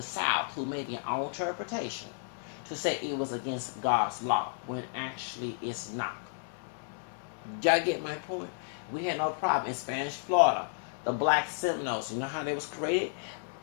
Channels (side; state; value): right; silent; 56 dB below the other